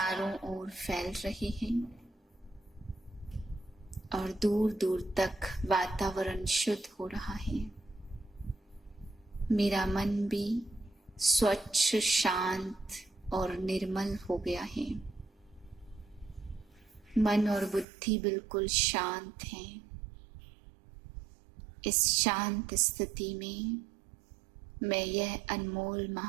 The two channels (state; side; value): drops out; left; at 17.9 s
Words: ओर फैल रहे हैं और दूर दूर तक वातावरण शुद्ध हो रहा है। मेरा मन भी स्वच्छ, शांत और निर्मल हो गया है। मन और बुद्धि बिल्कुल शांत हैं। इस शांत स्थिति में मैं यह अनमोल